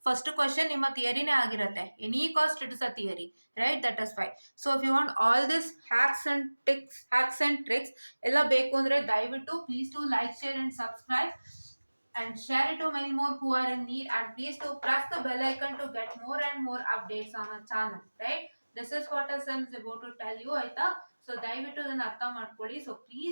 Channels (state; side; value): inverted; both; correlation -1.00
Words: ಫಸ್ಟ್ ಕ್ವಶನ್ ನಿಮ್ಮ ಥಿಯರಿನೇ ಆಗಿರುತ್ತೆ. Any cost it is a theory, right? That is why. So if you want all this hacks and tricks ಎಲ್ಲ ಬೇಕು ಅಂದರೆ ದಯವಿಟ್ಟು please to like, share and subscribe and share it to many more who are in need, and please to press the bell icon to get more and more updates on our channel, right? This is what I is about to tell you, ಆಯ್ತಾ. ಸೊ ದಯವಿಟ್ಟು ಇದನ್ನ ಅರ್ಥ ಮಾಡ್ಕೊಳ್ಳಿ. So